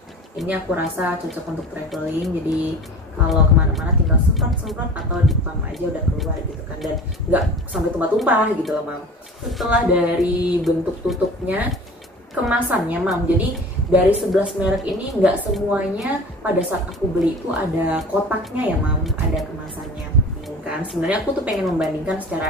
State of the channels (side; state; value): both; normal; correlation 0.40